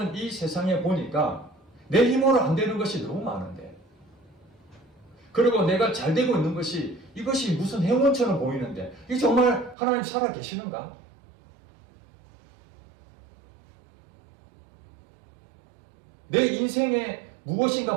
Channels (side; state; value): left; drops out; at 9.8 s